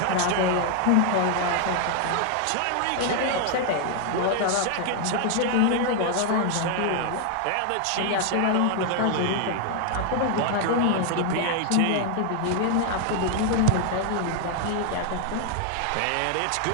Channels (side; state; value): both; different; correlation 0.00